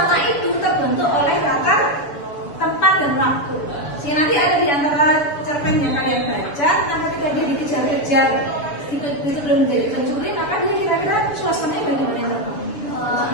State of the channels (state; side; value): late; right; 7.0 ms